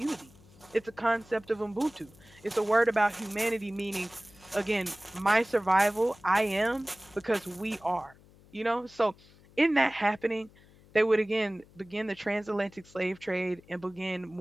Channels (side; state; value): left; noise; hum, 26 dB below the sound